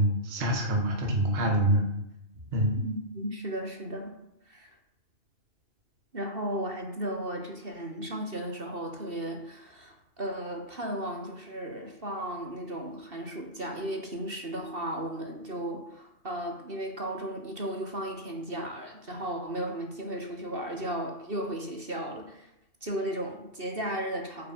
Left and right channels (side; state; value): left; late; 2.7 ms